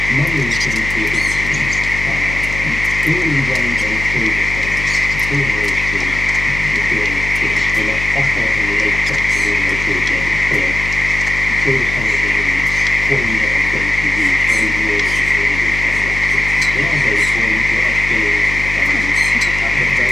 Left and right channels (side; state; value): left; noise; hum, 8 dB below the sound